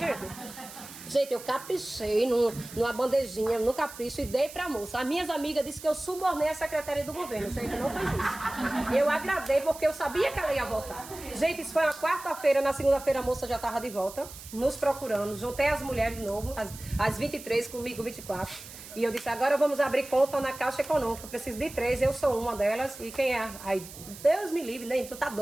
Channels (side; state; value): right; noise; hiss, 15 dB below the sound